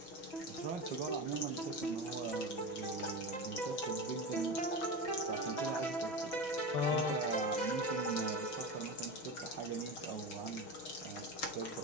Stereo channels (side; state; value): right; late; 6.5 ms